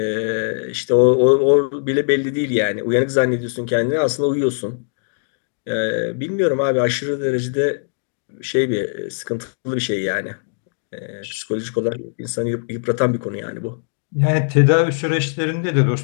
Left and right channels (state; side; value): silent; right; digital silence